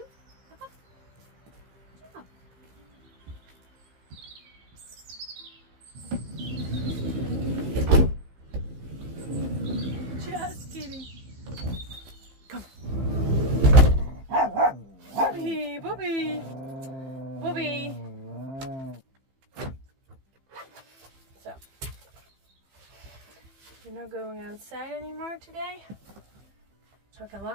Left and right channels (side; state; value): left; late; 15 ms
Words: Just kidding. Come. Bobby, Bobby, Bobby. So, you're not going outside anymore today, so I can